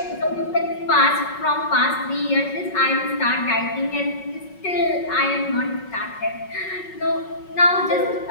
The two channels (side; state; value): right; late; 5.4 ms